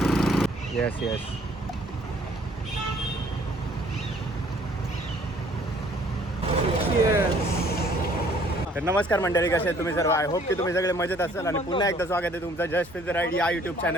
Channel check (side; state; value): both; normal; correlation 0.59